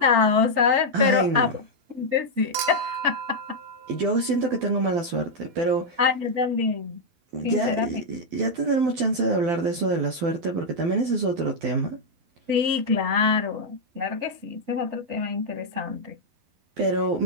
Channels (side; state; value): left; late; 12 ms